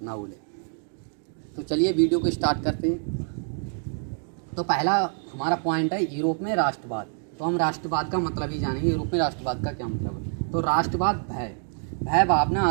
ना भूलें। तो चलिए वीडियो को स्टार्ट करते हैं। तो पहला हमारा पॉइंट है यूरोप में राष्ट्रवाद। तो हम राष्ट्रवाद का मतलब ही जानेंगे, यूरोप में राष्ट्रवाद का क्या मतलब है। तो राष्ट्रवाद भय भावना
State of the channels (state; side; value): silent; left; 56 dB below the other